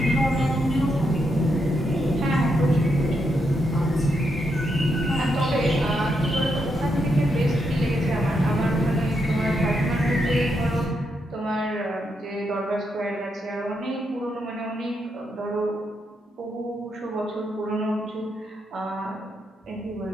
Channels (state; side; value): normal; both; correlation 0.81